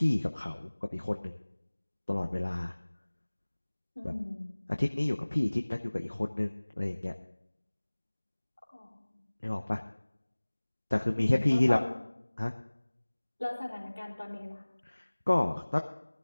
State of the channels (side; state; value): both; inverted; correlation -1.00